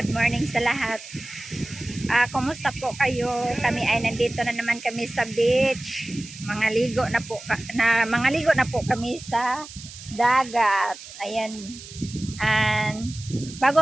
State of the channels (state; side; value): noise; right; hiss, 15 dB below the sound